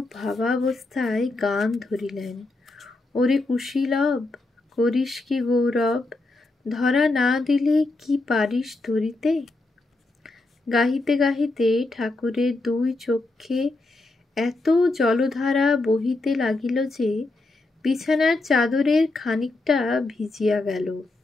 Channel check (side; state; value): right; quieter; 3.1 dB